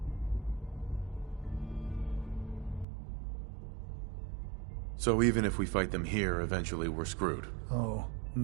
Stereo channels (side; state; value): left; drops out; at 2.9 s